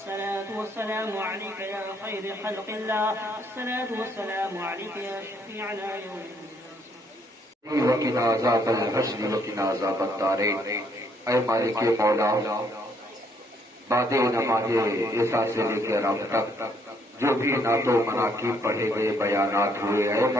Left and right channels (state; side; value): normal; both; correlation 0.69